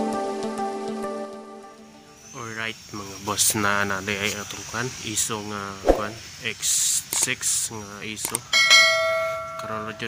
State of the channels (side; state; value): both; identical; correlation 1.00